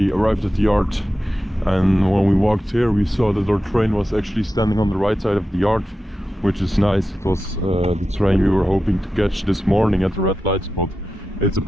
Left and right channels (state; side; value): normal; both; correlation 0.92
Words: arrived at the yard, and when we walked here we saw that our train was actually standing on the right side of the yard, which is nice. It was the train we were hoping to catch this morning at the red light spot. It's